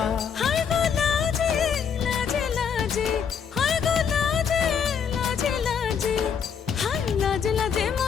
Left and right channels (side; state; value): right; quieter; 7.1 dB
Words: হায় গো লাজে লাজে লাজে, হায় গো লাজে লাজে লাজে, হায় লাজে লাজে